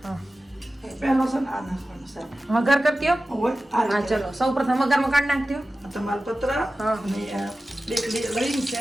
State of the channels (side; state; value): both; normal; correlation 0.95